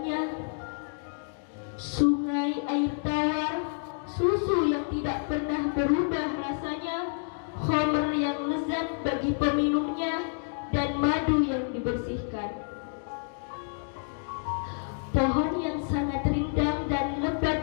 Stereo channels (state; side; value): silent; right; digital silence